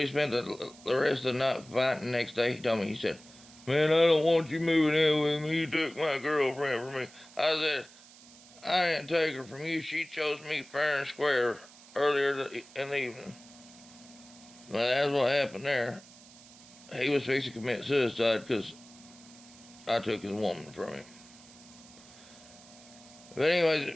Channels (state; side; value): noise; right; hiss, 22 dB below the sound